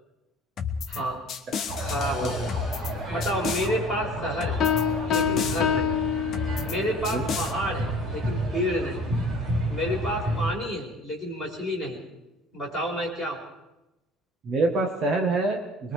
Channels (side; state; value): both; normal; correlation 0.47